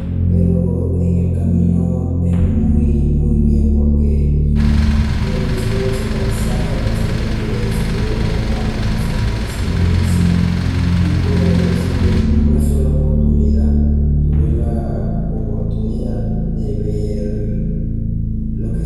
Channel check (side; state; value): both; identical; correlation 1.00